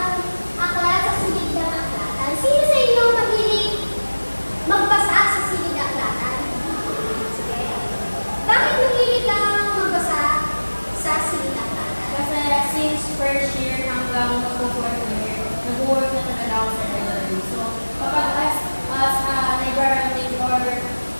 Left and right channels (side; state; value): both; inverted; correlation -1.00